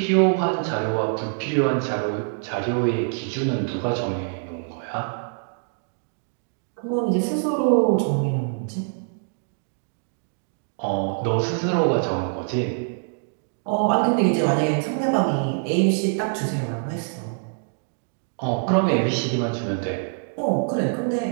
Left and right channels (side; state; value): left; silent; 62 dB below the other